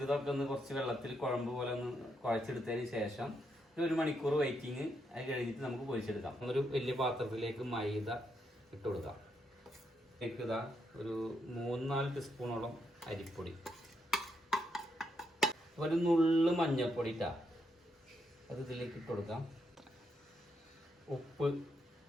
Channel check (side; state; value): both; normal; correlation 0.79